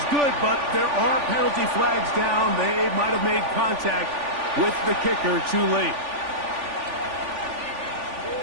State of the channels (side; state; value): left; late; 3.4 ms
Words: good, but there are penalty flags down. They might have made contact with the kicker too late.